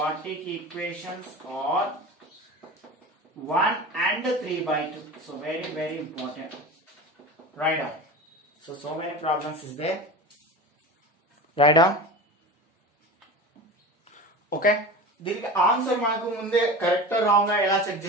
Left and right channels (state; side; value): normal; both; correlation 0.31